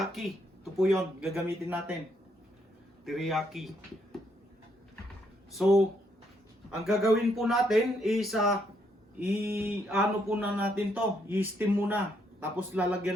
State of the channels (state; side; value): normal; both; correlation 0.74